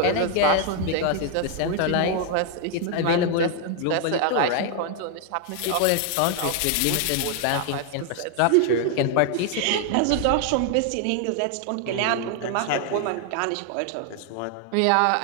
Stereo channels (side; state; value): both; different; correlation 0.00